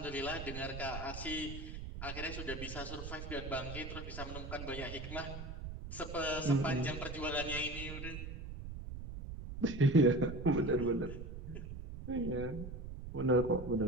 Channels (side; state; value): right; noise; rumble, 8 dB below the sound